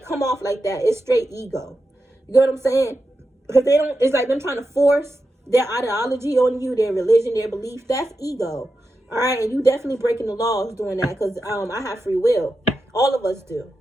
come off like that, it's straight ego. You know what I'm saying? Because it's like them trying to force their ideology on you, their religion, their belief. That's ego. All right, and you definitely breaking the laws doing that, because I have free will. All of us do.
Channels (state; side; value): normal; both; correlation 0.89